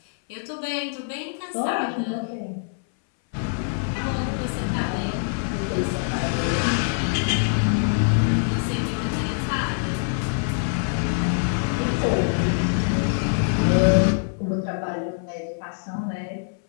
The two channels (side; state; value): right; silent; 62 dB below the other